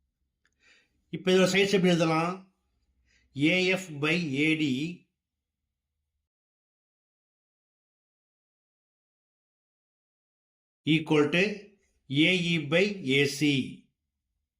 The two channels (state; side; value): identical; both; correlation 1.00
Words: இப்போ இதோட சைட்ஸ் எப்படி எழுதலாம்? AF by AD equal to AE by AC.